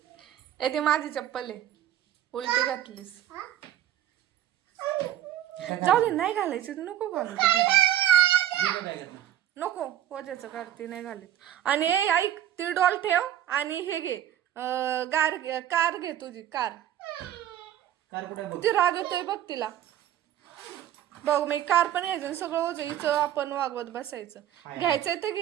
ती माझी चप्पल आहे. उलटी घातलीस. जाऊ दे नाही घालायचं. नको घालू नको. पोजाचं करते नाही घालीत. आणि ऐक ती डॉल ठेव आणि हे घे कार घे तुझी कार. ती राग येतोय बघ तिला. बघ मी कार पण यायचं सगळं ओझं हिचं आपण वागवत बसायचं. घ्यायचंय तर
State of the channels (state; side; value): quieter; left; 11.8 dB